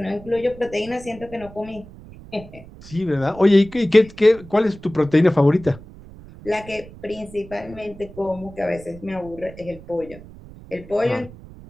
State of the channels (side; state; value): right; noise; rumble, 18 dB below the sound